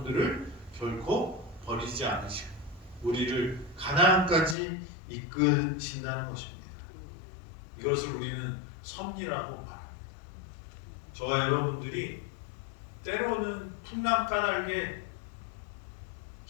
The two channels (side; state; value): right; drops out; at 4.5 s